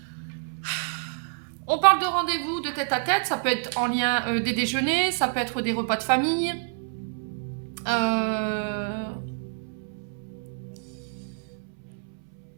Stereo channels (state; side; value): silent; left; 60 dB below the other